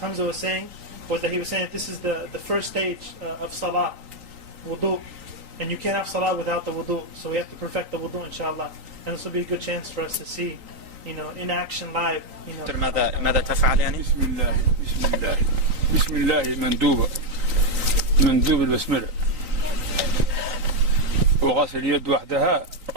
was saying, he was saying that this is the first stage of salah, wudu, and you can't have salah without the wudu, so we have to perfect the wudu, inshallah. And this will be a good chance for us to see, in action live. ماذا تفعل يعني؟ بسم الله مندوب البسملة، وغسل اليد وحدها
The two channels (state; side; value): late; left; 3.9 ms